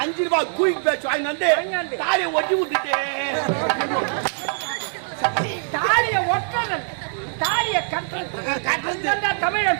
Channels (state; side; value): silent; left; digital silence